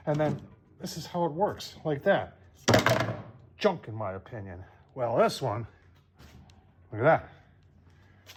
And then this is how it works, like that. Junk, in my opinion. Well, this one, look at that.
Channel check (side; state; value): both; identical; correlation 1.00